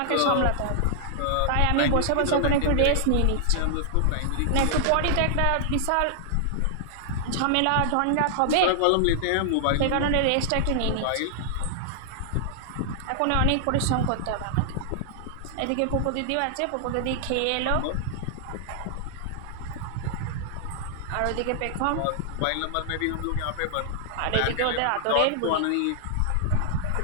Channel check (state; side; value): different; both; correlation -0.01